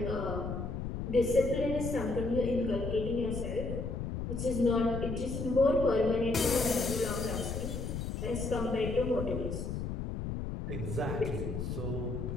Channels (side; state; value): left; noise; rumble, 4 dB below the sound